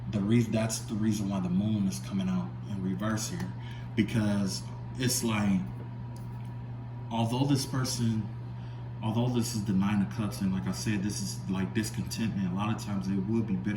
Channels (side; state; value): both; identical; correlation 1.00